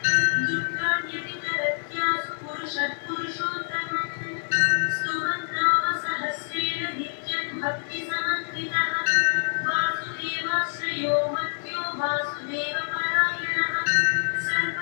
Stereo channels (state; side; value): silent; right; 61 dB below the other